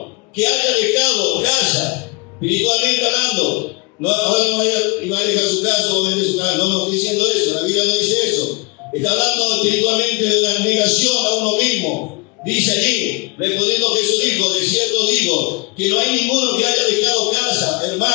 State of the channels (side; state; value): right; quieter; 27.3 dB